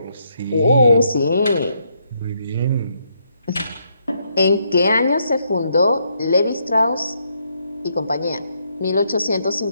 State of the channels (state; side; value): inverted; both; correlation -0.76